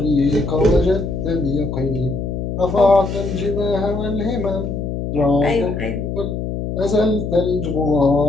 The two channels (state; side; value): noise; left; hum, 4 dB below the sound